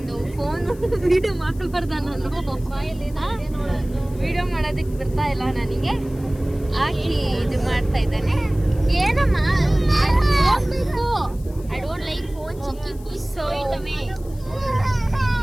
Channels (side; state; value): left; noise; hiss, 24 dB below the sound